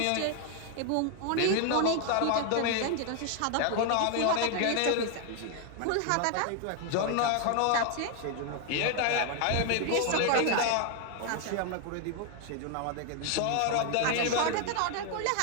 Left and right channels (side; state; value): both; different; correlation 0.00